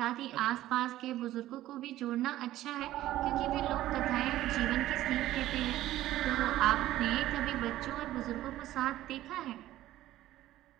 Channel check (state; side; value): quieter; left; 14.5 dB